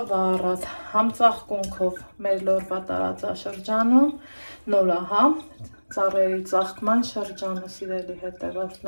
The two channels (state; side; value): inverted; both; correlation -1.00